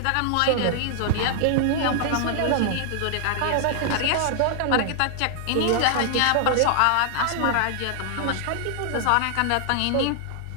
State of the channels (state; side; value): different; both; correlation 0.00